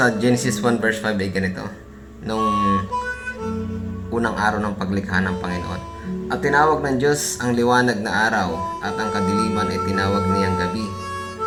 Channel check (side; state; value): both; identical; correlation 1.00